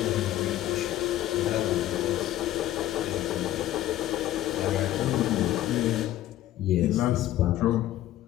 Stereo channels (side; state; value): right; quieter; 13.8 dB